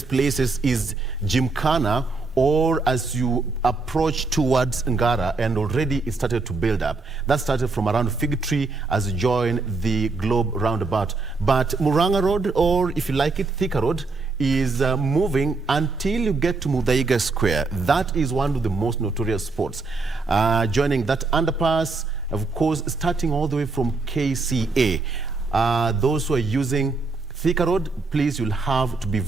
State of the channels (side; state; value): left; quieter; 3.9 dB